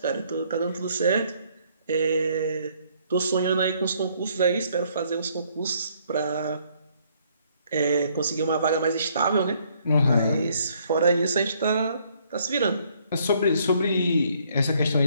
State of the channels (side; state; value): both; inverted; correlation -0.66